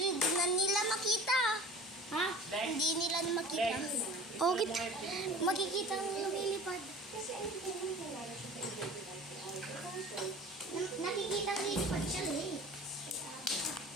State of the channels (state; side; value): normal; both; correlation 0.41